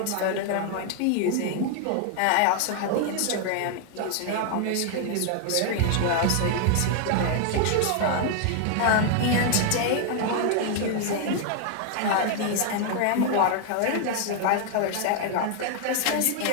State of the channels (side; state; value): both; different; correlation 0.00